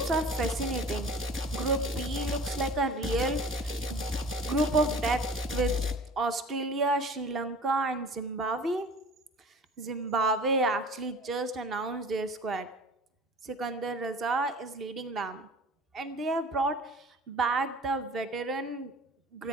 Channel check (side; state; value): both; normal; correlation 0.43